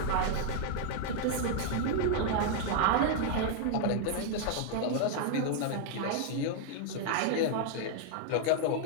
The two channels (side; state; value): both; different; correlation 0.00